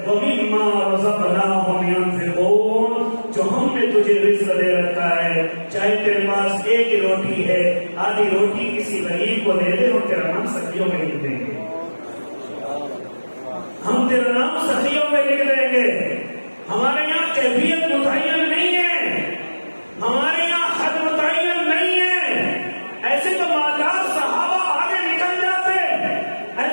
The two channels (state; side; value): inverted; both; correlation -1.00